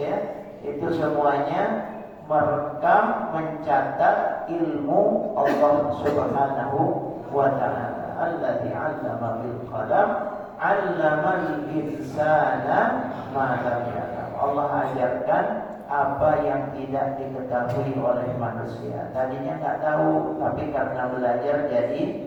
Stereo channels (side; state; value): both; identical; correlation 1.00